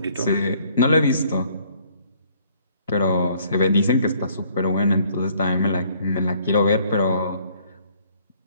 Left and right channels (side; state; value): both; inverted; correlation -0.62